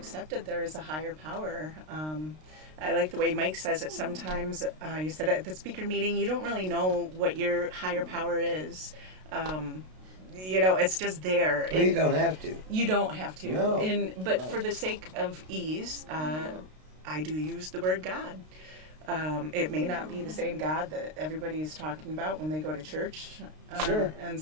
there is a higher power. I like the way Mike says it sometimes. You said at the speaker meeting, you don't really know what your higher power is. It's just there. Well, you don't have to. You don't have to. No. But for the sake of ease, I do use the word God. It may not be the same God that everybody is talking about when they go to church and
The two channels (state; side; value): late; left; 32 ms